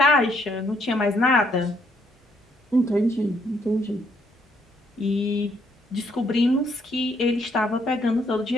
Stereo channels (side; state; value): both; normal; correlation 0.70